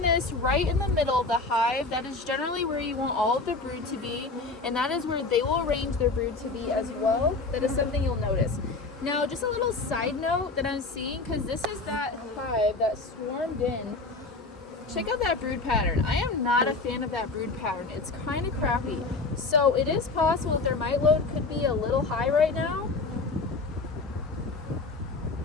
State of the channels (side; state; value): right; quieter; 3.6 dB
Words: this right in the middle of the hive. That is generally where you want all of the brood to be, and that is where they will arrange their brood to be as well. That is something you'll notice. Now, just a little side note that I'm seeing, because this is that hive that swarmed in. Check out that brood pattern. I am not a fan of that brood pattern. It's kind of crappy. So it is possible that their mite load could be a little high right now.